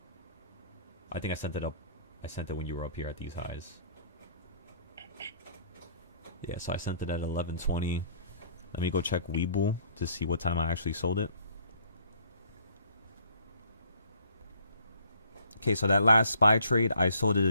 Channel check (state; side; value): inverted; both; correlation -0.60